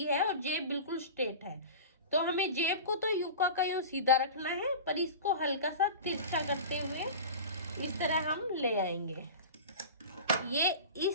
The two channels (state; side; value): inverted; both; correlation -0.32